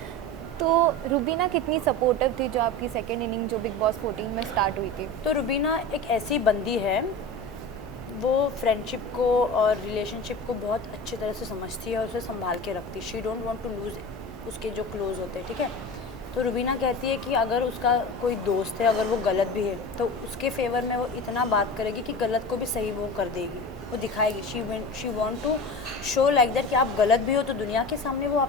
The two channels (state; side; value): normal; both; correlation 0.31